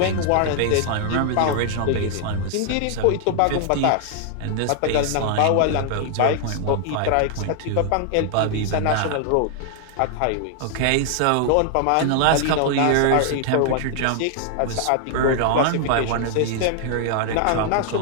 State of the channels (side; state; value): both; different; correlation 0.00